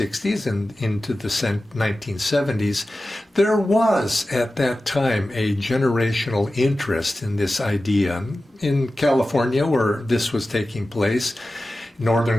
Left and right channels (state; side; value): normal; both; correlation 0.95